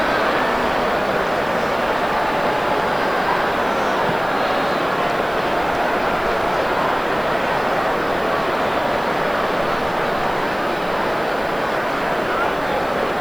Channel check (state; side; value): noise; right; hiss, 23 dB below the sound